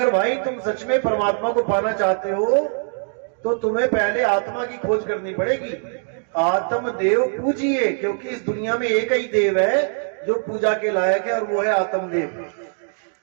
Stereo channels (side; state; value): left; silent; 64 dB below the other